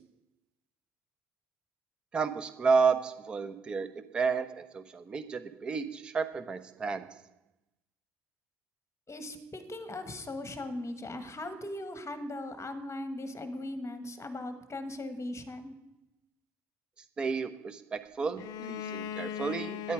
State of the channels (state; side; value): quieter; left; 3.4 dB